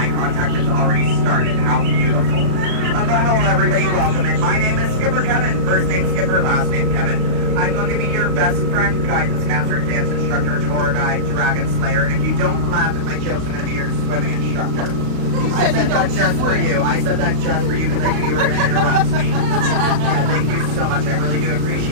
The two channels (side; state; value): left; late; 36 ms